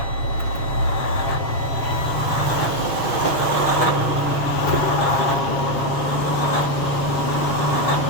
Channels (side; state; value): right; late; 6.8 ms